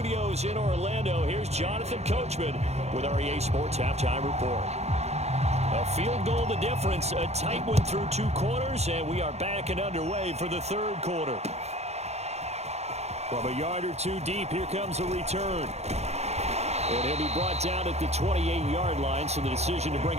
in Orlando, here's Jonathan Coachman with our EA Sports Halftime Report. A field goal the difference, a tight one through 2 quarters, and we are back and underway for the 3rd quarter. From a yard or 2 deep, here comes a return. And he'll be brought down at the 28-yard line, so the decision to bring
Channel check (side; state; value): left; late; 0.31 ms